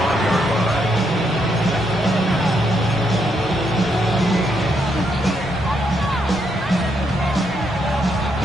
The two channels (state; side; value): noise; left; rumble, 22 dB below the sound